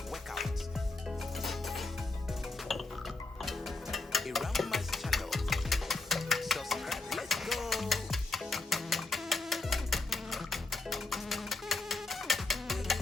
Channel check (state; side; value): quieter; right; 3.4 dB